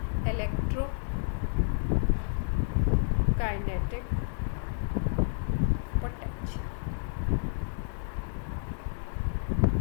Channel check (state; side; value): silent; right; digital silence